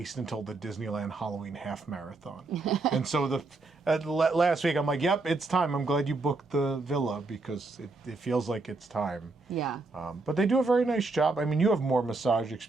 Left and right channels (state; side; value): quieter; left; 3.4 dB